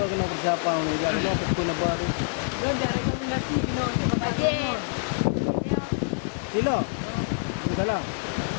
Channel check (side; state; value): right; silent; digital silence